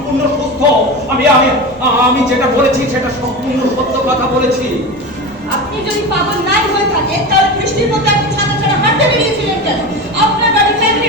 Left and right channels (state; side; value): normal; both; correlation 0.26